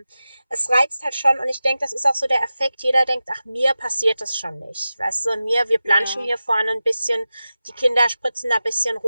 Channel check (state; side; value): inverted; both; correlation -0.94